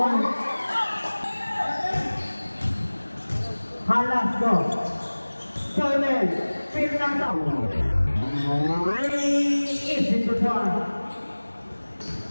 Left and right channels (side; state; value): both; inverted; correlation -1.00